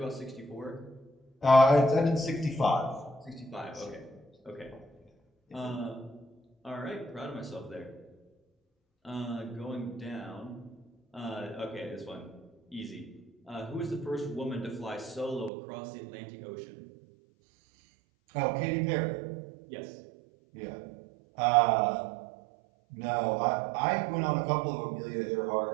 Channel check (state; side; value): drops out; left; at 15.5 s